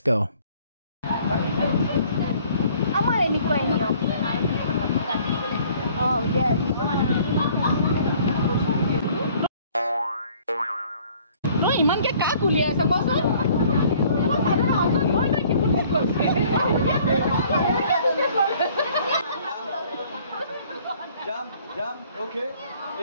go. আমাৰ এনেকুৱাই নিয়ম ইমানকে কাক উলিয়াইছে কচোন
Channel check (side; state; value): both; inverted; correlation -0.57